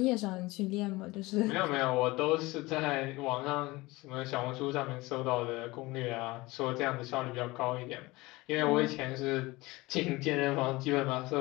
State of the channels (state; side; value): quieter; right; 21.3 dB